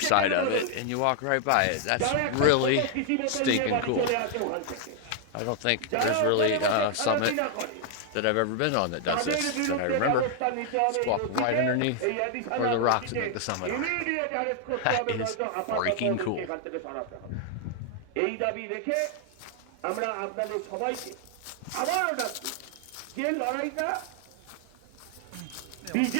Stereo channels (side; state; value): both; different; correlation 0.00